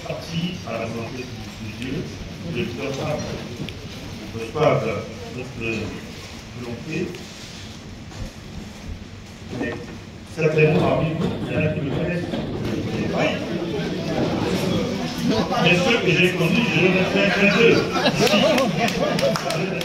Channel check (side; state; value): both; identical; correlation 1.00